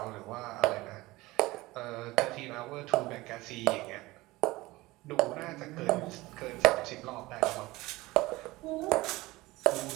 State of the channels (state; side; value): quieter; left; 20.0 dB